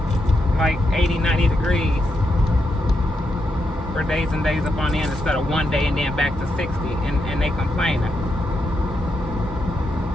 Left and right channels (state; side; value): normal; both; correlation 0.83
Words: like 80, 90 degrees for days and days up on end instead of one day and then back to 60. And they complaining.